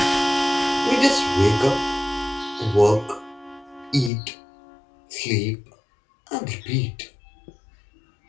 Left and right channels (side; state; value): right; drops out; at 4.1 s